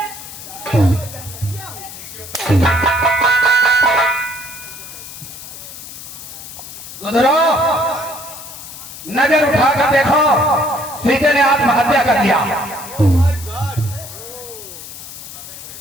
गुजरो, नजर उठाकर देखो, सीते ने आत्महत्या कर दिया।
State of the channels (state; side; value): noise; left; hiss, 13 dB below the sound